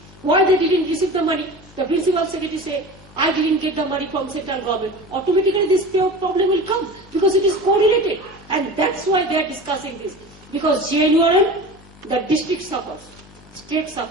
why they didn't receive the money, the principal secretary say, I didn't get the money from central government, automatically this problem will come because it is correlated. And that's why they are discussing this. Because JNURM, the district suffers, state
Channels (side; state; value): both; normal; correlation 0.34